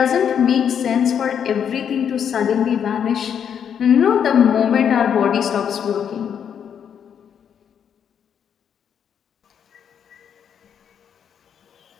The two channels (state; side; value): quieter; right; 8.2 dB